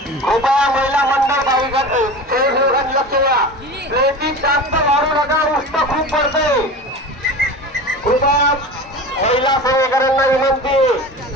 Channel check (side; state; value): both; normal; correlation 0.32